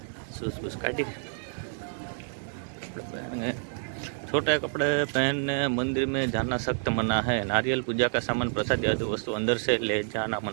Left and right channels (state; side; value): silent; left; digital silence